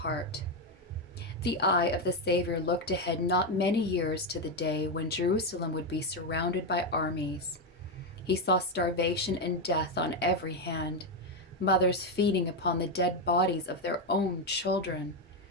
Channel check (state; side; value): normal; both; correlation 0.07